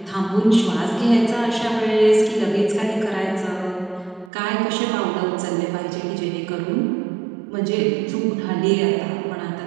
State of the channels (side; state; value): left; drops out; at 4.3 s